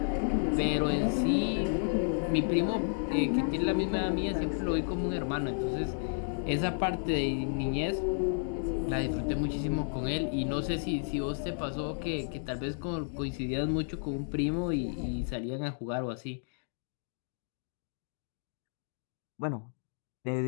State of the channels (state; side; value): silent; right; digital silence